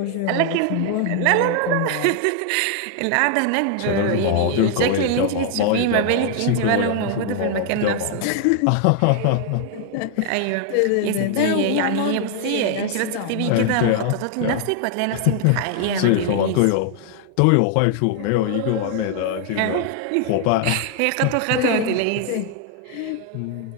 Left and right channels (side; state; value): both; different; correlation 0.00